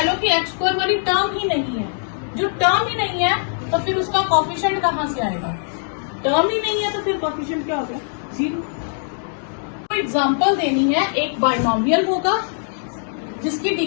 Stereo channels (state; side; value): silent; right; digital silence